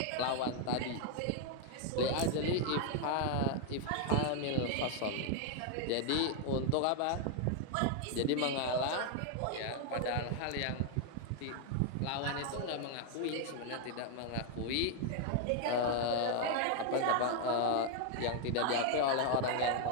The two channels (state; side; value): different; both; correlation 0.00